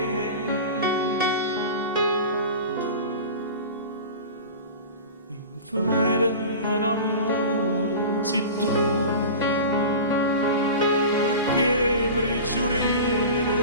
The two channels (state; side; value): inverted; both; correlation -0.32